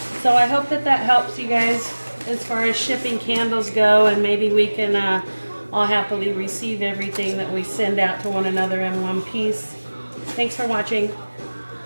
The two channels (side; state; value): both; inverted; correlation -1.00